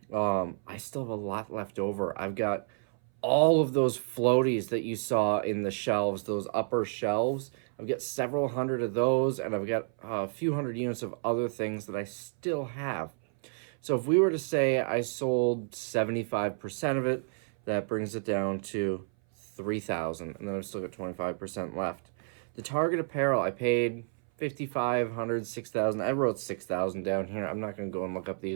I still have a lot left over. I've got all of those floaties that you saw in the shelves, those upper shelves. I've got several hundred of those, and I've got a few hundred units of other things that I still have. So if we were to say I sold 75% of it, that brings it down to 3,000, and then I've still got 25% left. The Target apparel, I paid 5,500, 6,000. I wrote 6,000 down here. I'm not going to go and look up the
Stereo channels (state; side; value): silent; left; 58 dB below the other